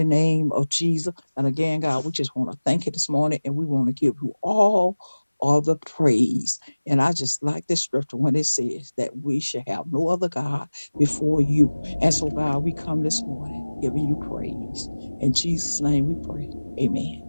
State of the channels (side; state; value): both; inverted; correlation -1.00